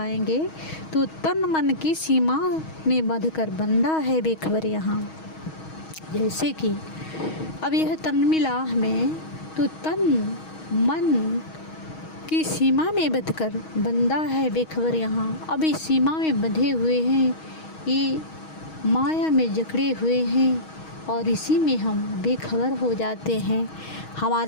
तो तन मन की सीमा में बंधकर बंदा है बेखबर यहाँ। जैसे कि अब यह तन मिला हमें तो तन मन की सीमा में बंधकर बंदा है बेखबर यहाँ। अब इस सीमा में बंधे हुए हैं, ये माया में जकड़े हुए हैं और इसी में हम बेखबर हो जाते हैं।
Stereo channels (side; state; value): right; late; 6.3 ms